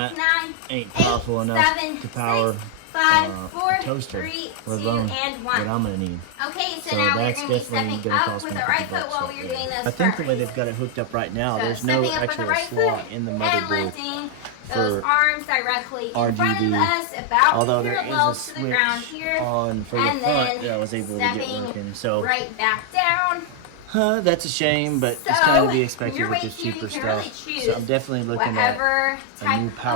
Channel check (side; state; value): both; different; correlation 0.00